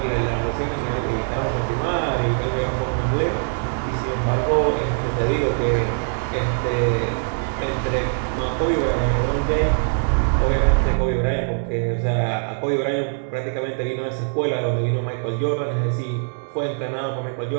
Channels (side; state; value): left; silent; 62 dB below the other